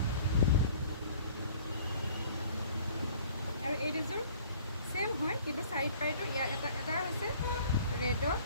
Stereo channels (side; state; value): both; inverted; correlation -0.52